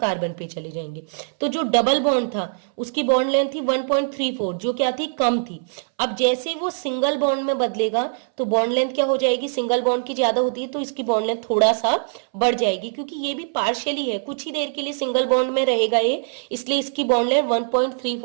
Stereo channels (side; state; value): left; silent; 63 dB below the other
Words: पे चले जाएंगे। तो जो डबल बॉन्ड था उसकी बॉन्ड लेंथ थी 1.34, जो क्या थी, कम थी। अब जैसे वो सिंगल बॉन्ड में बदलेगा तो बॉन्ड लेंथ क्या हो जाएगी, सिंगल बॉन्ड की ज्यादा होती है तो इसकी बॉन्ड लेंथ थोड़ा सा बढ़ जाएगी, क्योंकि ये भी पार्शियली है, कुछ ही देर के लिए सिंगल बॉन्ड में रहेगा ये, इसलिए इसकी बॉन्ड लेंथ